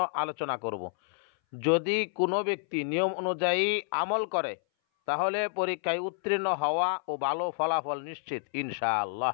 আলোচনা করব। যদি কোনো ব্যক্তি নিয়ম অনুযায়ী আমল করে তাহলে পরীক্ষায় উত্তীর্ণ হওয়া ও ভালো ফলাফল নিশ্চিত ইনশাআল্লাহ।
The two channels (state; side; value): silent; right; 58 dB below the other